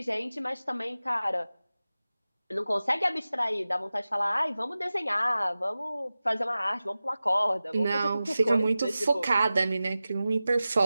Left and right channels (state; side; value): inverted; both; correlation -0.95